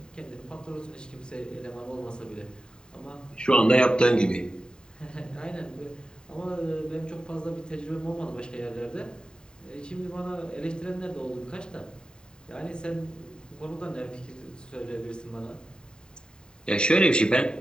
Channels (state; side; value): late; right; 0.048 ms